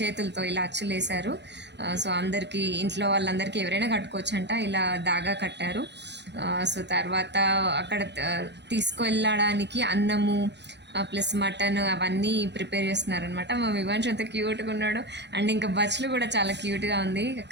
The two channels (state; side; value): late; left; 0.50 ms